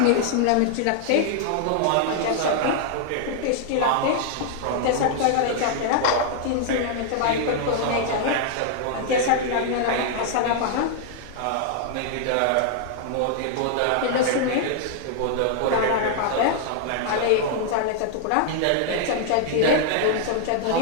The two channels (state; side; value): different; both; correlation 0.00